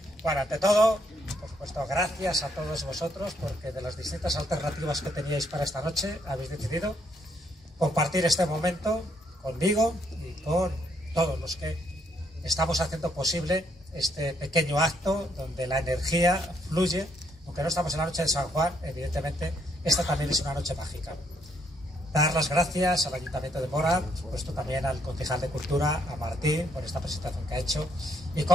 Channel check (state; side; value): normal; both; correlation 0.71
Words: Bueno, ante todo, por supuesto, gracias a todos vosotros porque de las distintas alternativas que teníais para esta noche habéis decidido compartir este momento conmigo y con todos los que estamos haciendo posible este pequeño acto donde la energía fluye. Aunque no estamos en la noche de San Juan, evidentemente esta también es una noche mágica. Dar las gracias al Ayuntamiento de Móra, por supuesto también al concejal de Cultura, a Martín, por esta presentación que ha hecho, y